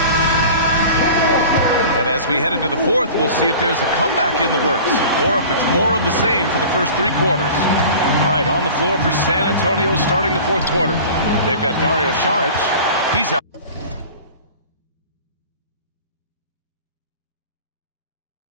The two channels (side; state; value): both; inverted; correlation -0.40